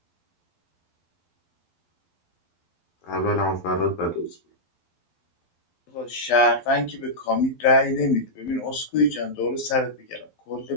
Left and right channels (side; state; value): right; late; 12 ms